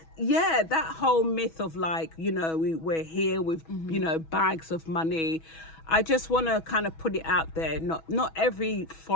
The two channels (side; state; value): right; late; 6.2 ms